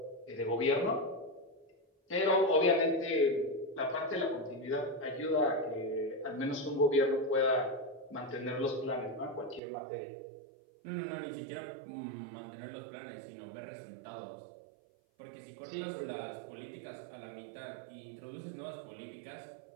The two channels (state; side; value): drops out; left; at 9.6 s